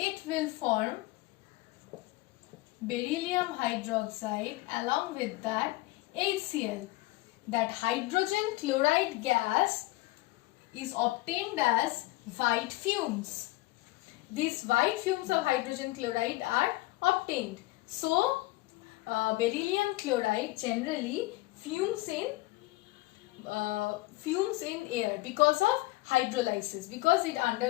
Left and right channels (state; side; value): quieter; right; 19.9 dB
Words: will form beryllium hydroxide, along with that HCl. That hydrogen chloride gas is obtained as white fumes. These white fumes of hydrogen chloride are obtained. So beryllium chloride generally fumes in air because of hydrolysis, because it